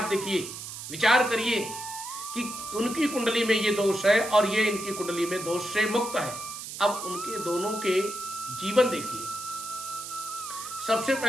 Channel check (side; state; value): right; noise; hiss, 9 dB below the sound